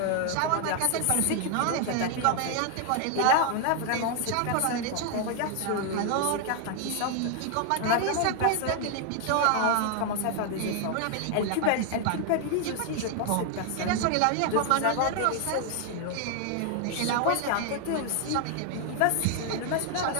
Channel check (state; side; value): different; both; correlation 0.00